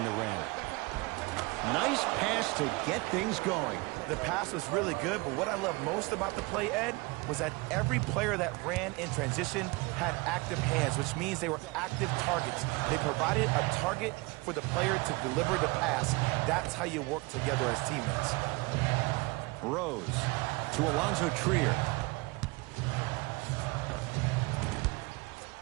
the rim. Nice pass to get things going. The pass was really good, but what I love most about the play, Ed, was that every player that ran in transition had active hands, which means they were active targets. They provided a target for the player to deliver the pass. That's how you work together as teammates. Rose to Alonzo Trier.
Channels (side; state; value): left; quieter; 24.8 dB